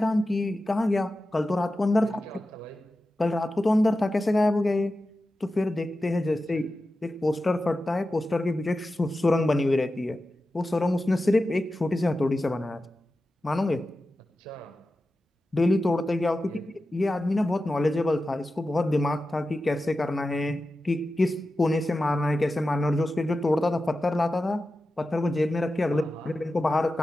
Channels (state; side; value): normal; both; correlation 0.93